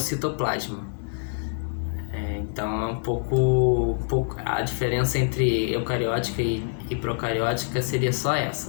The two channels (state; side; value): silent; right; digital silence